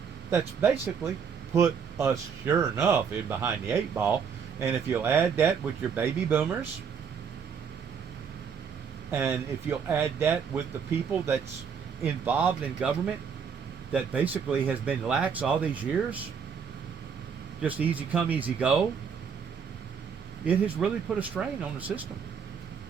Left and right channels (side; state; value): left; quieter; 6.6 dB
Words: That's basically put us, sure enough, in behind the 8 ball. And if you'll add that with your baby boomers, and if you'll add that with the people that's involved in government that basically has been lax all these years, just easy come, easy go, it has really put a strain on the system.